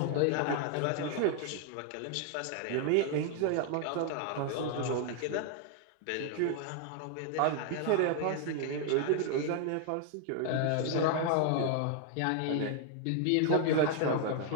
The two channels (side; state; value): both; different; correlation 0.00